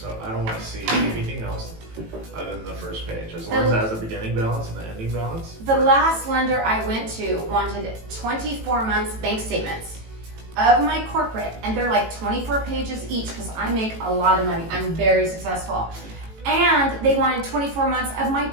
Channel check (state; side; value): late; left; 18 ms